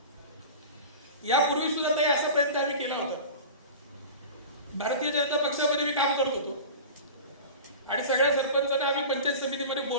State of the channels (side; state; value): both; inverted; correlation -0.33